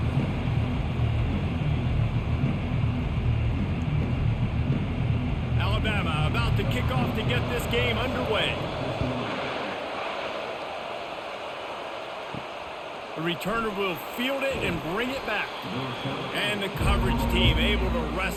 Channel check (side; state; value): both; identical; correlation 1.00